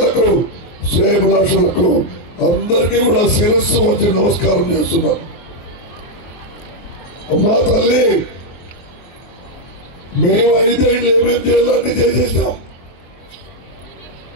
శ్రేయభిలాషులకు అందరికీ కూడా శిరస్సు వంచి నమస్కారం చేస్తున్నాను. మా తల్లి, మేము 5 ఏళ్ళు ఏమేమి చేయాలని చేసేసాం.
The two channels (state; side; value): late; right; 23 ms